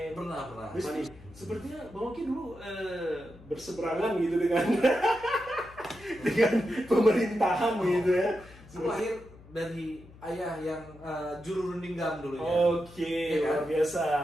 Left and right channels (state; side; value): noise; left; hum, 21 dB below the sound